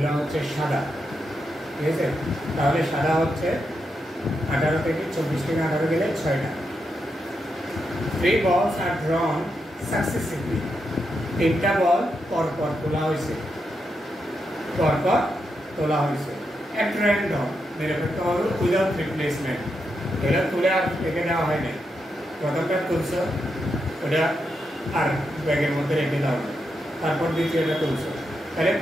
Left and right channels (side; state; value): both; normal; correlation 0.84